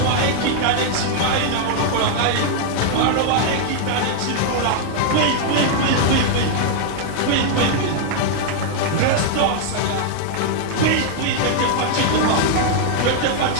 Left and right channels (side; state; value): both; different; correlation 0.00